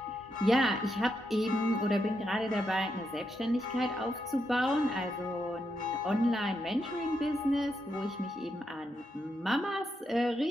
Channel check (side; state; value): both; normal; correlation 0.82